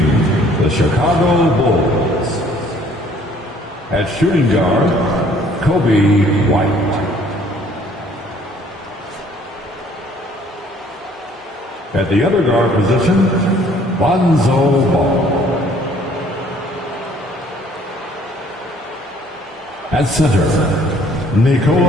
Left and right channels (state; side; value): normal; both; correlation 0.59